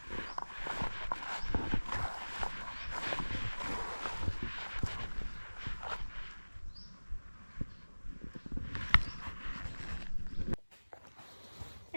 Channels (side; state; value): both; inverted; correlation -1.00